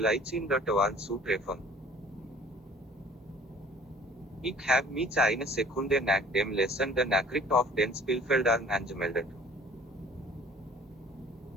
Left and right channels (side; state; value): both; normal; correlation 0.51